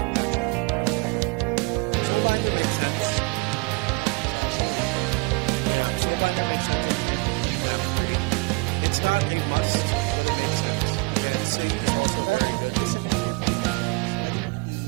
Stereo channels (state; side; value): quieter; left; 29.3 dB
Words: matchup earlier. But Soulbinder makes sense. Yeah, sa Soul. Yeah, Soulbinder makes sense in map 3. It's not a must, but it makes sense. Again, Saint is also Pero very kung good. gusto nang i-brute force, pwede na nang